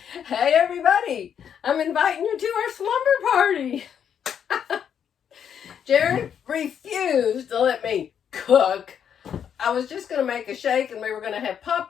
Hey everybody, I'm inviting you to our slumber party. Jerry refused to let me cook. I was just going to make a shake and we were going to have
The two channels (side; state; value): right; quieter; 8.4 dB